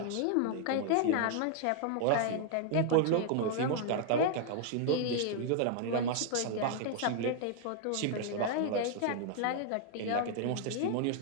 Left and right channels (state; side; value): different; both; correlation 0.00